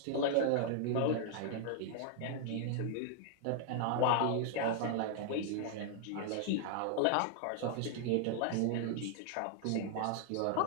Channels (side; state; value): both; different; correlation 0.00